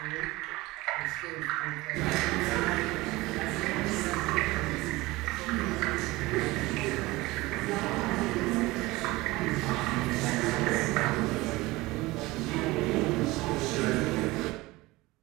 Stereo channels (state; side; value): quieter; left; 20.6 dB